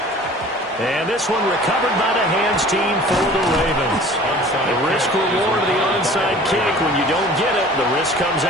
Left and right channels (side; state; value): both; normal; correlation 0.46